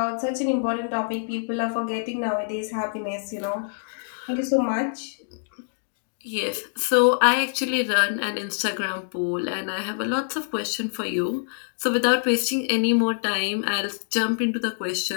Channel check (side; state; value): right; silent; digital silence